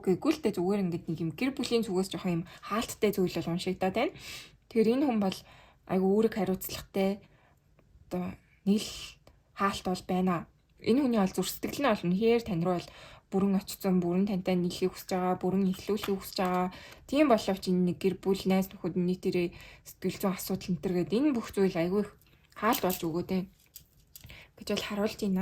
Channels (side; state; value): both; identical; correlation 1.00